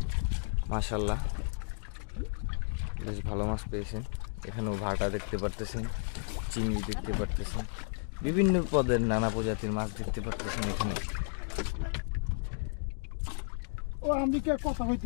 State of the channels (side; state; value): right; silent; digital silence